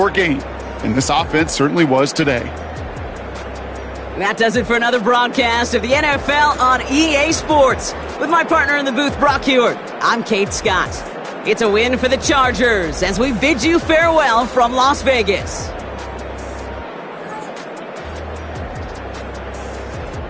game. And this offense certainly was today. That does it for another broadcast of the NFL on EA Sports. With my partner in the booth, Brock Huard, I'm Kate Scott. It's a win for the Chargers as we bid you farewell from Las Vegas.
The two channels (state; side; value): identical; both; correlation 1.00